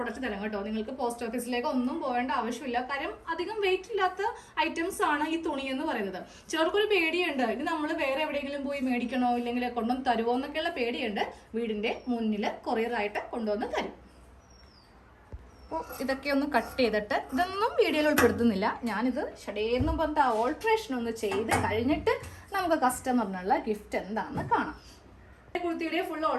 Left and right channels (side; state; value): both; identical; correlation 1.00